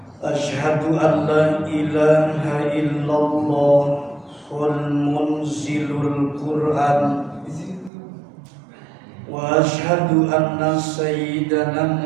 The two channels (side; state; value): left; drops out; at 7.9 s